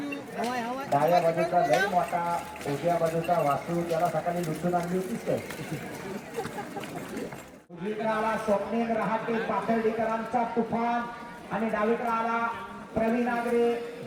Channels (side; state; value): both; identical; correlation 1.00